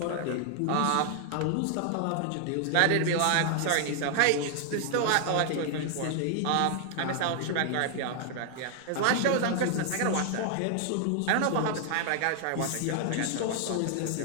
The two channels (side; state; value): both; different; correlation 0.00